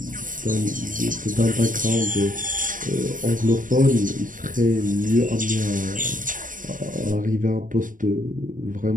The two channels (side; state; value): left; late; 0.38 ms